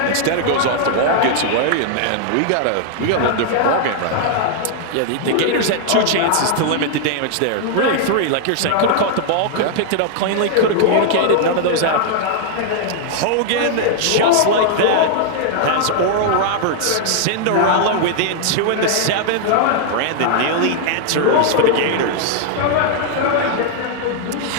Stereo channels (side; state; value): both; different; correlation -0.01